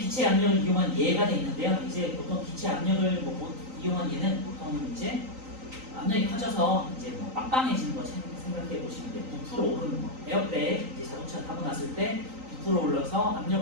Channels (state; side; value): late; left; 3.9 ms